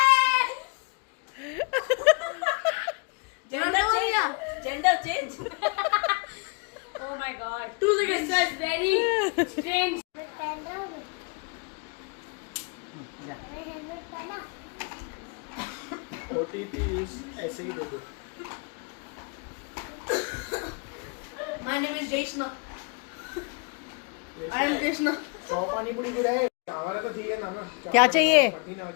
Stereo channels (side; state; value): right; quieter; 32.1 dB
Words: Gender change. Oh my god. 2 seconds. This was very strange. OTP ऐसे ही दे दो। My name is Jaishna. I am Jaishna. 100 पानी पूरी पूरा है चावल तो चाहिए ना ना क्या चाहिए? पति ना